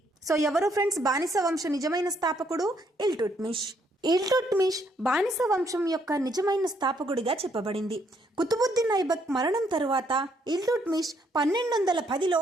సో ఎవరు ఫ్రెండ్స్ బానిస వంశ నిజమైన స్థాపకుడు? ఇల్టుట్మిష్. ఇల్టుట్మిష్ బానిస వంశం యొక్క నిజమైన స్థాపకుడిగా చెప్పబడింది. కుతుబుద్దీన్ ఐబక్ మరణం తరువాత ఇల్టుట్మిష్ 1210లో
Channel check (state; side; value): normal; both; correlation 0.71